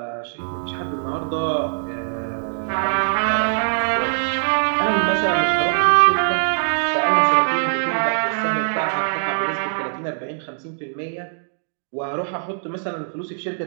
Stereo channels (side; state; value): left; silent; digital silence